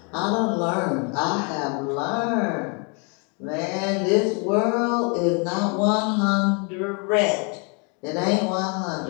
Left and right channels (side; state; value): right; quieter; 35.0 dB